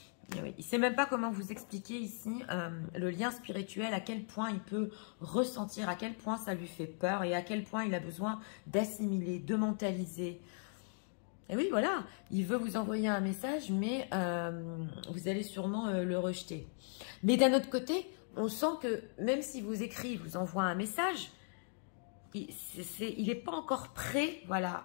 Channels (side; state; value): right; silent; 52 dB below the other